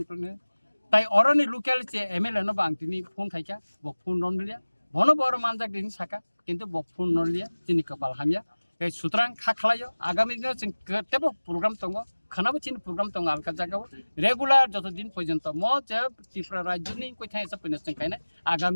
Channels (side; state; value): both; inverted; correlation -1.00